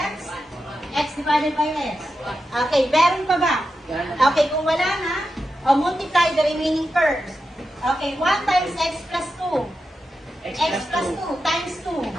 X divided by x. Okay, meron pa ba? Okay, kung wala na, multiply the remaining terms. Okay, 1 times x plus 2. X plus 2 times 2.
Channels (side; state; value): both; normal; correlation 0.89